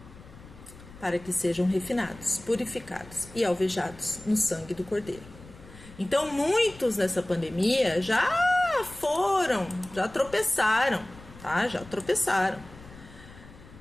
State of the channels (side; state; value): left; noise; rumble, 19 dB below the sound